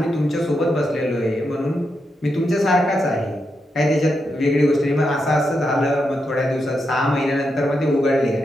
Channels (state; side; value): normal; both; correlation 0.84